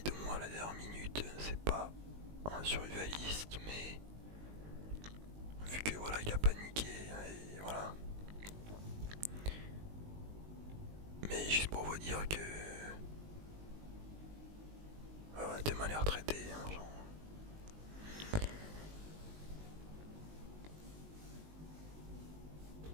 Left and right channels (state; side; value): late; left; 19 ms